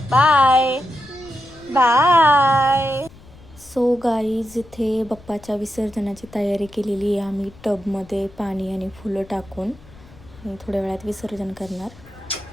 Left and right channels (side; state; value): left; noise; rumble, 22 dB below the sound